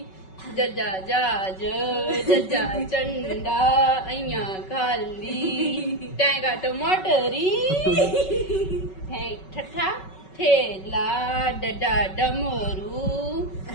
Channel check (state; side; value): late; right; 5.3 ms